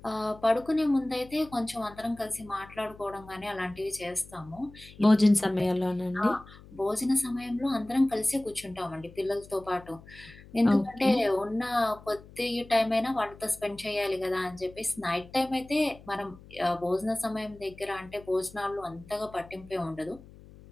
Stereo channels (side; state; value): left; noise; hum, 20 dB below the sound